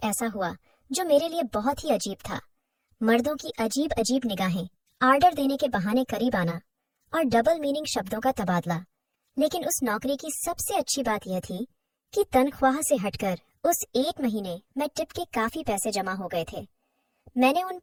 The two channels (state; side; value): identical; both; correlation 1.00